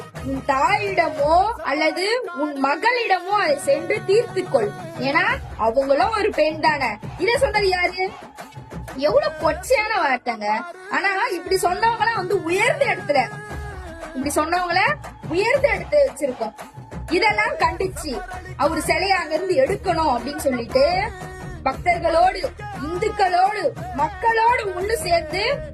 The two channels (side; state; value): both; identical; correlation 1.00